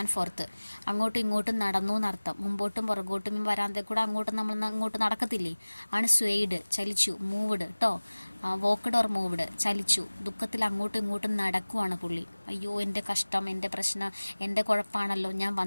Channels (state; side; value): inverted; both; correlation -1.00